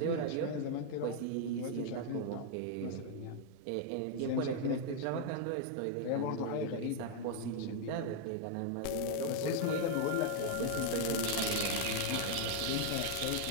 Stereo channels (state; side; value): different; both; correlation 0.00